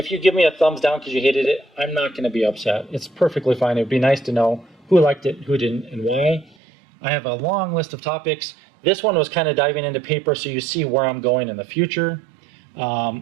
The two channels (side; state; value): left; drops out; at 6.6 s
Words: you give me a thumbs down because you hated it, I'm not going to be upset. It's perfectly fine. It would be nice to know who liked it, who didn't, and why. I have a long list of topics. This one was kind of diving into paper so you see where I'm going in the future.